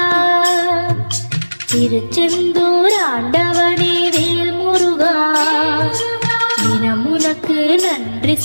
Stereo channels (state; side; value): inverted; both; correlation -1.00